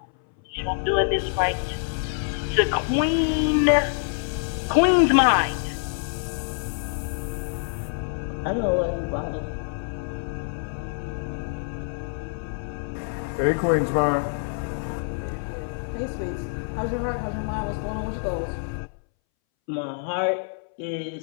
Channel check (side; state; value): right; silent; 61 dB below the other